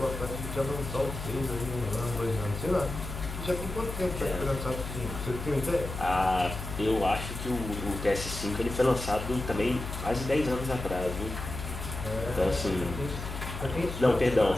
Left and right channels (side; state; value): left; noise; hum, 7 dB below the sound